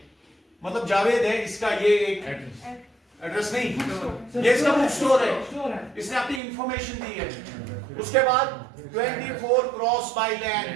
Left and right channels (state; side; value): drops out; left; at 6.4 s